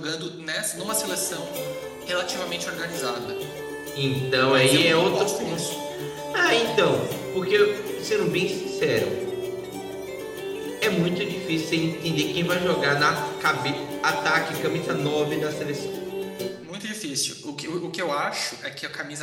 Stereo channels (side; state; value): both; identical; correlation 1.00